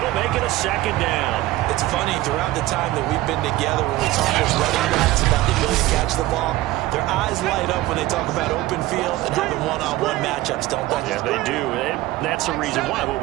make it a 2nd down. It's funny, throughout the time that we've been together when we talk as running backs about the ability to catch the ball, their eyes light up when they talk about open field and having one-on-one matchups, don't they? Yeah, they do. That's the reason why. What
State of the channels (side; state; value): left; quieter; 17.1 dB